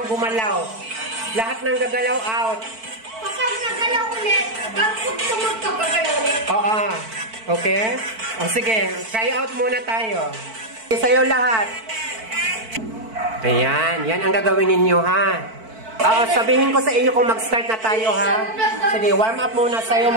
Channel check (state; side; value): late; left; 4.5 ms